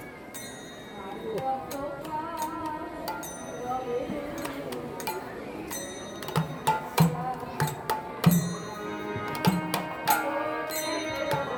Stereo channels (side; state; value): both; identical; correlation 1.00